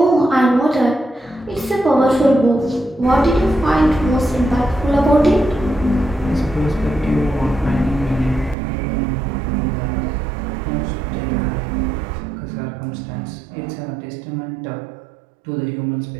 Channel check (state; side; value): drops out; left; at 8.6 s